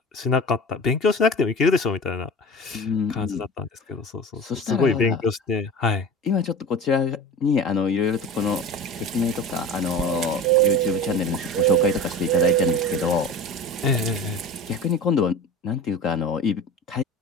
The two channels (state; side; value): normal; both; correlation 0.34